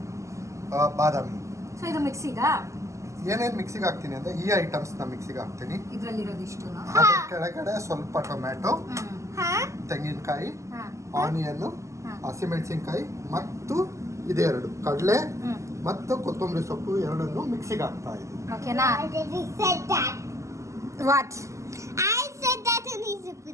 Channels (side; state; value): left; late; 0.15 ms